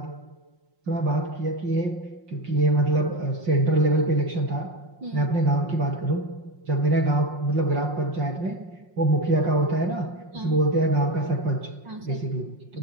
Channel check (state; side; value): late; left; 5.6 ms